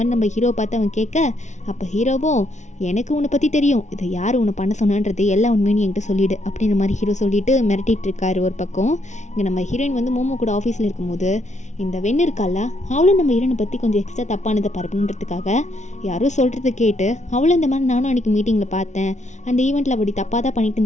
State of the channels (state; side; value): late; right; 0.34 ms